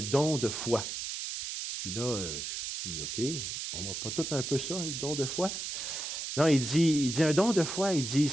don de foi. Puis là, je dis, OK, on va pas tout un peu ça, le don de foi? Non, il dit un don de foi, il dit,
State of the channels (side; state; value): right; noise; hiss, 5 dB below the sound